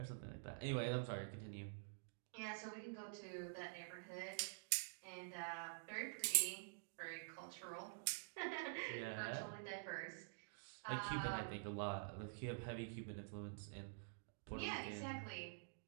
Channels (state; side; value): silent; left; digital silence